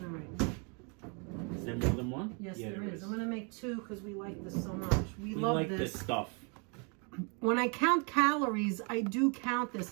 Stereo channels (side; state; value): left; quieter; 35.3 dB